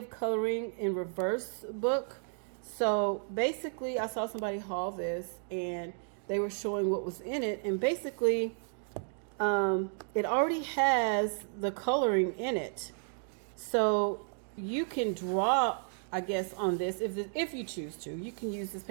coloring in reverse book. So basically, I saw somebody haul this and they were showing what was in it. And basically, it already has the coloring in it. So you can draw, I guess, on this if you choose to. You can use this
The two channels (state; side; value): silent; left; 56 dB below the other